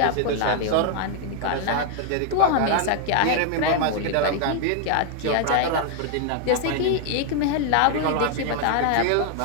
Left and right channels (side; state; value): both; different; correlation 0.00